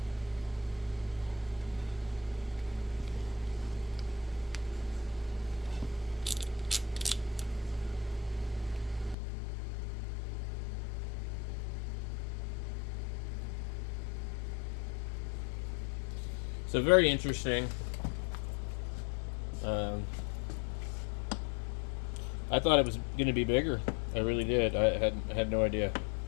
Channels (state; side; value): drops out; right; at 9.2 s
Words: So very interesting. I thought it was going to be bigger. I really did. I had no idea.